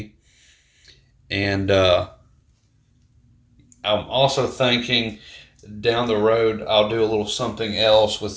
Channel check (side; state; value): both; identical; correlation 1.00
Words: and I'm also thinking down the road I'll do a little something else